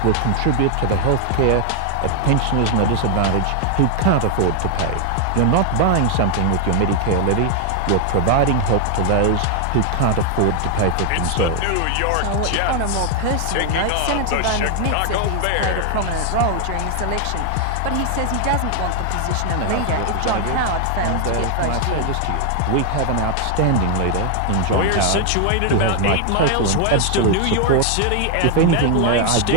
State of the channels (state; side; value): different; both; correlation 0.00